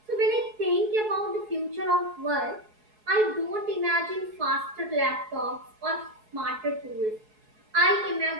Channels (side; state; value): left; late; 4.7 ms